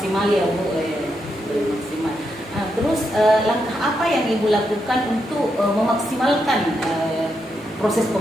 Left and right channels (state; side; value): normal; both; correlation 0.82